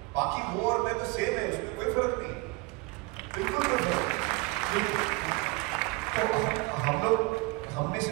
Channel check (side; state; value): left; quieter; 25.0 dB